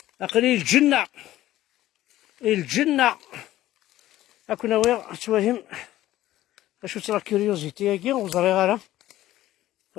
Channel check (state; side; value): quieter; right; 14.6 dB